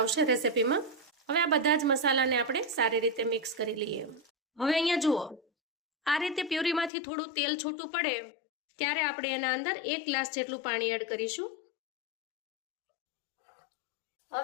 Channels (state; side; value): drops out; right; at 6.9 s